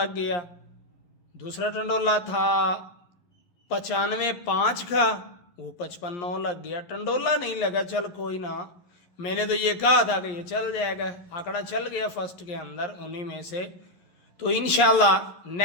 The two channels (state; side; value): late; right; 11 ms